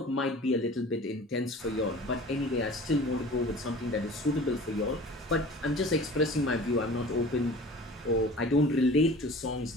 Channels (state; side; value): normal; both; correlation 0.42